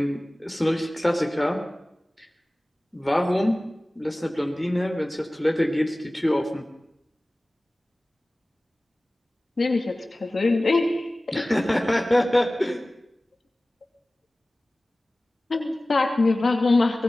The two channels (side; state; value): both; normal; correlation 0.98